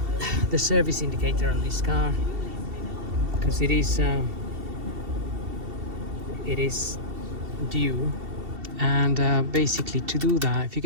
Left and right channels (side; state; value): left; late; 2.7 ms